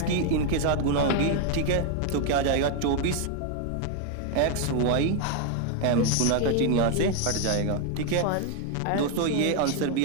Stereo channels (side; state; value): both; different; correlation 0.00